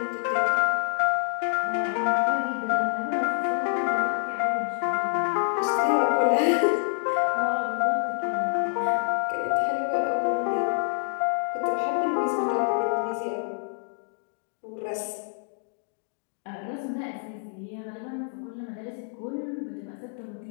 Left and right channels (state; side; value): silent; right; 60 dB below the other